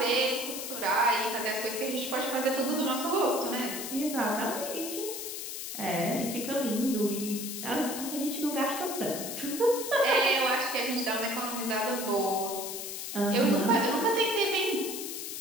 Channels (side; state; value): left; noise; hiss, 6 dB below the sound